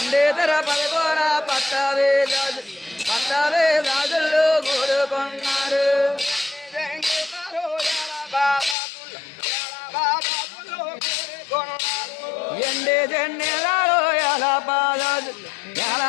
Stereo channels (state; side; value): drops out; right; at 8.8 s